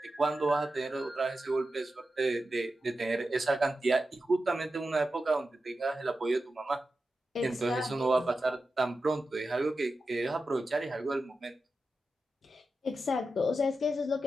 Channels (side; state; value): both; normal; correlation 0.91